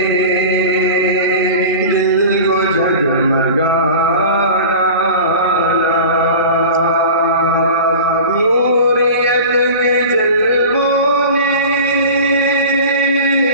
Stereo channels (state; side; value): inverted; both; correlation -0.35